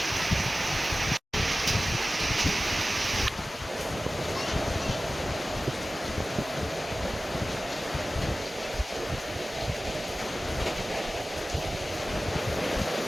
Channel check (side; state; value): both; normal; correlation 0.96